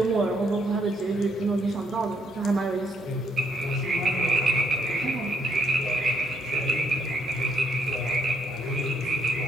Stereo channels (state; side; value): normal; both; correlation 0.71